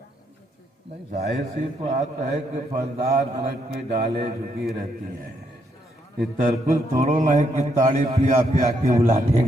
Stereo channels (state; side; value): normal; both; correlation 0.76